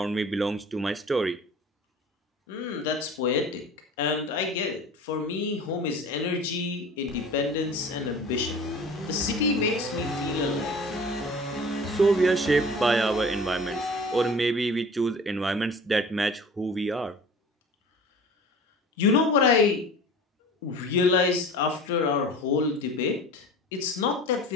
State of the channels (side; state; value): both; normal; correlation 0.41